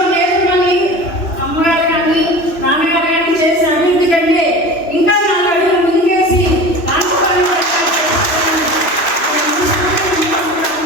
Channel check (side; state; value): right; late; 3.0 ms